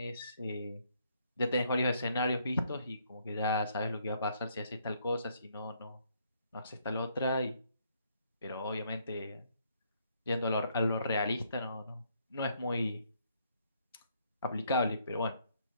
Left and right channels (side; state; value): both; inverted; correlation -0.70